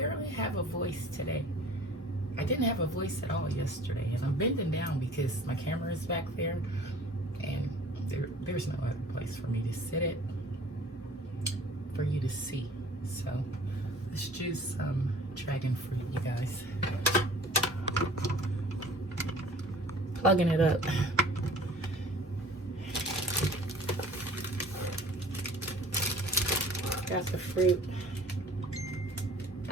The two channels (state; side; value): normal; both; correlation 0.48